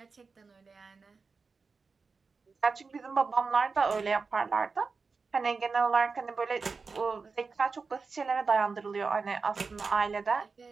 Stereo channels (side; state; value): left; quieter; 4.6 dB